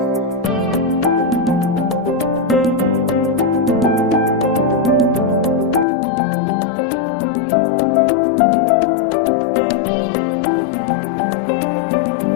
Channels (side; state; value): right; drops out; at 5.9 s